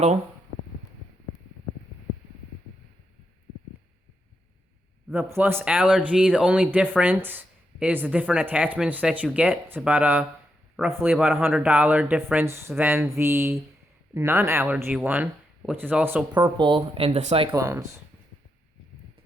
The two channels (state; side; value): normal; both; correlation 0.83